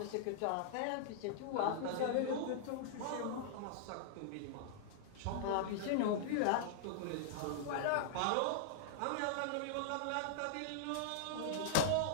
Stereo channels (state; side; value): different; both; correlation -0.01